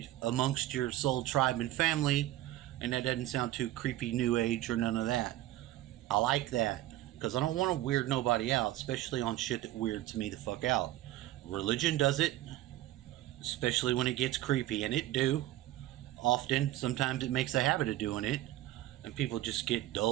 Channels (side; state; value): left; quieter; 15.0 dB